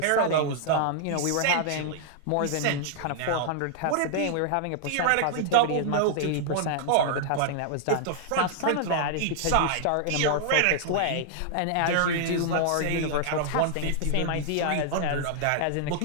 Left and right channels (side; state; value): both; different; correlation -0.01